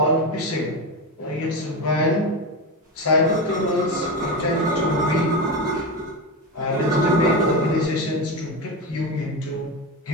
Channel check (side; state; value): both; normal; correlation 0.18